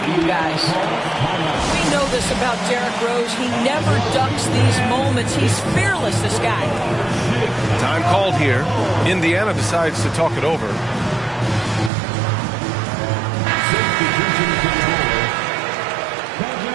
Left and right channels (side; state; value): left; drops out; at 11.9 s